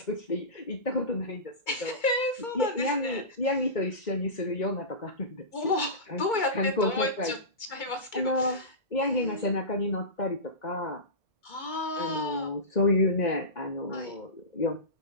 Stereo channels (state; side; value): late; right; 2.2 ms